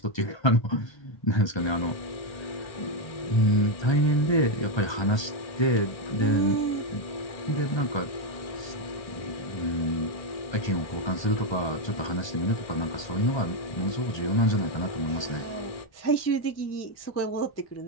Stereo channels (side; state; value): right; late; 1.3 ms